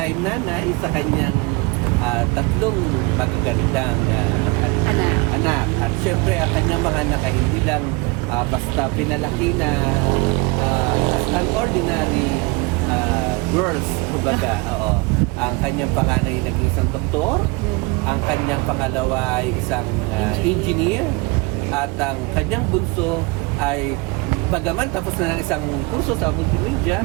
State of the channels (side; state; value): left; quieter; 26.1 dB